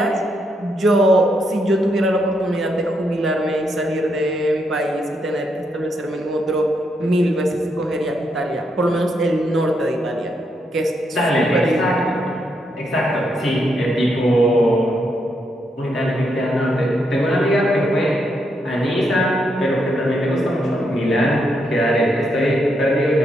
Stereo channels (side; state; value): both; normal; correlation 0.79